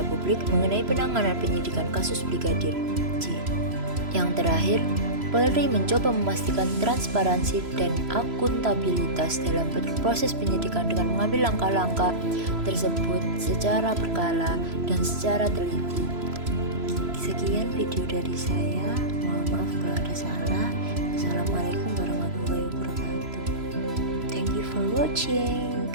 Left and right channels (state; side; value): late; left; 3.0 ms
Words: publik mengenai penanganan penyidikan kasus Brigadir J. Yang terakhir, Polri mencoba memastikan transparansi dan akuntabilitas dalam proses penyidikan dengan mengambil langkah-langkah tersebut secara berkala dan secara teliti. Sekian video dari saya, mohon maaf kalau ada salah. Assalamualaikum warahmatullahi wabarakatuh. Thank you for watching.